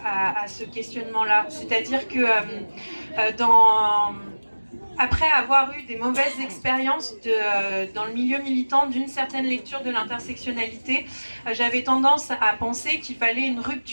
ce questionnement-là. C'est-à-dire que après avoir eu des mauvaises expériences dans le milieu militant d'une certaine lecture de l'intersectionnalité, j'avais tendance à penser qu'il fallait une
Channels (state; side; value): inverted; both; correlation -1.00